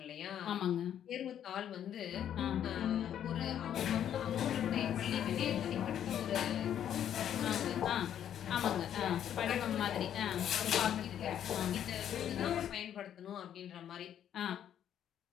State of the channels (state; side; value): quieter; right; 10.0 dB